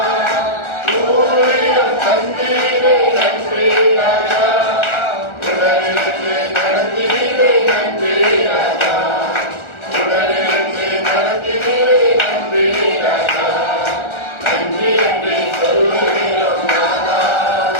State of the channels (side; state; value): right; late; 1.4 ms